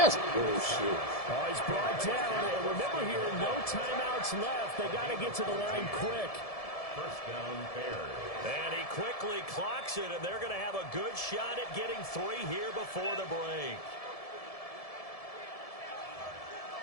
bullshit. Oh, he's brought down. And remember here, no timeouts left. They got to get to the line quick. First down, Bears. And he quickly clocks it, and they're going to have a good shot at getting 3 here before the break.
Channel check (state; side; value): late; right; 1.7 ms